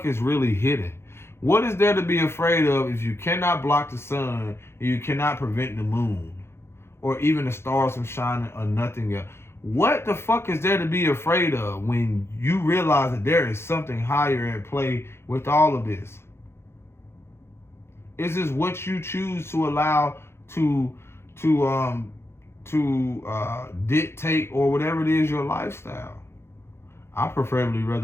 is really hidden? What is there to be afraid of if you cannot block the sun and you cannot prevent the moon or even the stars from shining or nothing else? What the fuck is there to be afraid of when you realize that there is something higher at play with all of this? Is this what you choose to allow to dictate or whatever it is your lifestyle? I preferably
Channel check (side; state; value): right; late; 0.12 ms